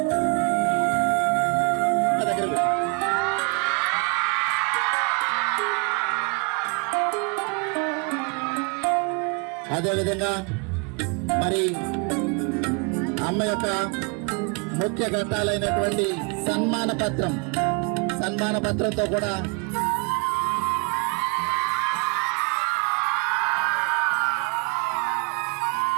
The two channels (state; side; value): quieter; left; 33.4 dB